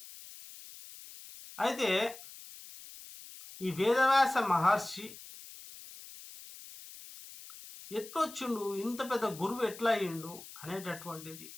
అయితే ఈ వేదవ్యాస మహర్షి ఎట్లొచ్చిండు, ఇంత పెద్ద గురువు ఎట్లా అయ్యిండు అనేటటువంటిది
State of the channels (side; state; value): left; noise; hiss, 16 dB below the sound